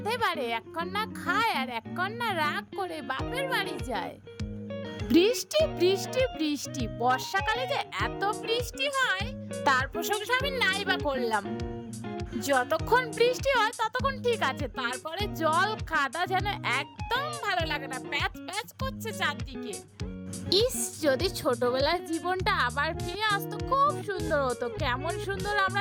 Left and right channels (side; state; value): both; identical; correlation 1.00